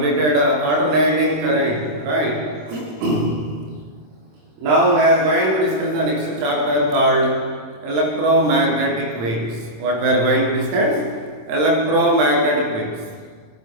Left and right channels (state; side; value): late; left; 27 ms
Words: alternating current, right? Now we are going to discuss the next chapter called electromagnetic waves. What we are going to discuss? Electromagnetic waves.